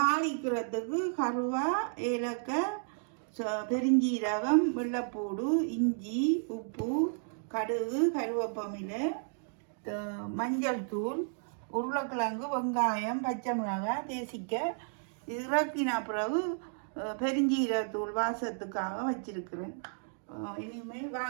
கருவா, ஏலக்காய், பெருஞ்சீரகம், வெள்ளைப்பூடு, இஞ்சி, உப்பு, கடுகு, கருவேப்பமிலை, மஞ்சள் தூள், உருளைக்கிழங்கு, வெங்காயம், பச்சை மிளகாய், தேசிக்காய். இறக்கின பிறகு பெருஞ்சீரகத்தூள் வாசத்துக்காக வச்சிருக்கிறேன். இனிமேல்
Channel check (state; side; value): silent; left; digital silence